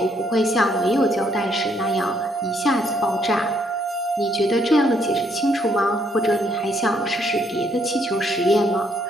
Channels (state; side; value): normal; both; correlation 0.71